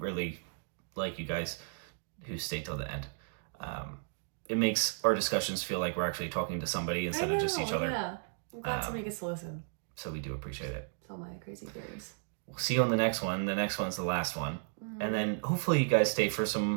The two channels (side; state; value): left; silent; digital silence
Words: like you guys who stay till the end. It makes our discussions feel like we're actually talking to somebody instead of just each other. Yeah. I'm glad somebody gets to listen. So we do appreciate it. It's all my crazy theories. We'll see you on the next one. The next one's the last one. And then hopefully you guys stay for